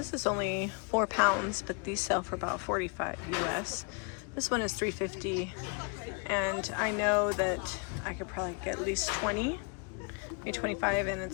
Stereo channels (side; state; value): right; quieter; 35.1 dB